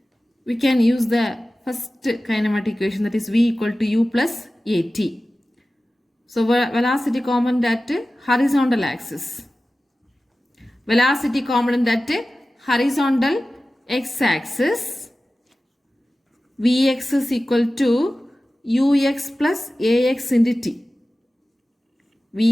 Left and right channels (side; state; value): both; normal; correlation 0.96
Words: we can use the first kinematic equation, that is v equal to u plus at. So velocity component at horizontal axis. Velocity component at horizontal x-axis. Vx is equal to ux plus ax into t. V